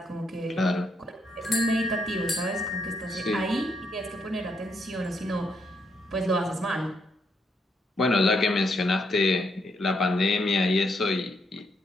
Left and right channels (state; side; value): normal; both; correlation 0.76